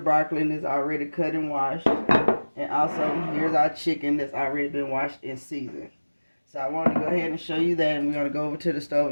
that's already cut and washed. And also here's our chicken that's already been washed and seasoned. So I wanted to go ahead and show you that, and we're going to go over to the stove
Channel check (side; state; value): both; inverted; correlation -1.00